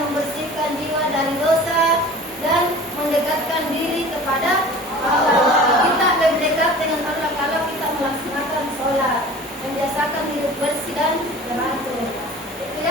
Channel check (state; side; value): normal; both; correlation 0.41